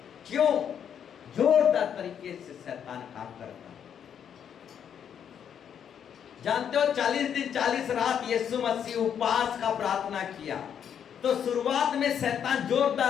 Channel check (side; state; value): right; quieter; 8.5 dB